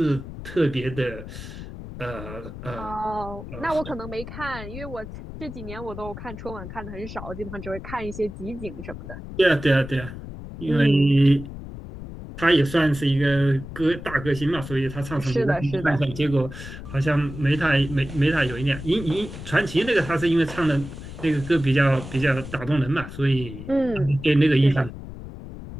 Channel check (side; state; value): left; noise; rumble, 11 dB below the sound